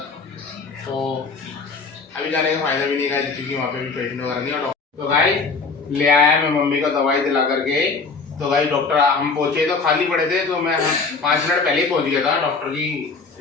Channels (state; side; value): quieter; right; 4.4 dB